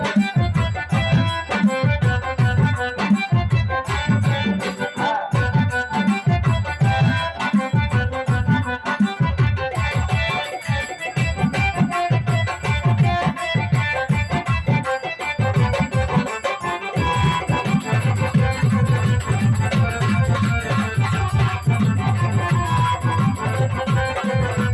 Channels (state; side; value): identical; both; correlation 1.00